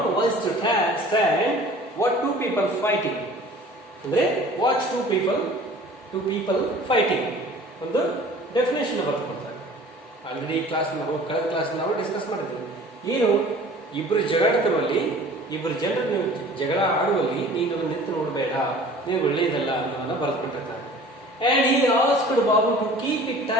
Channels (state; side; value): normal; both; correlation 0.46